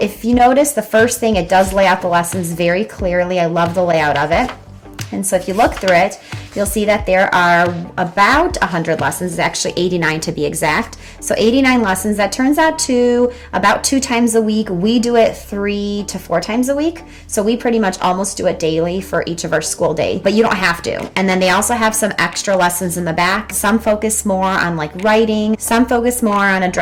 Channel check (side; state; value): both; identical; correlation 1.00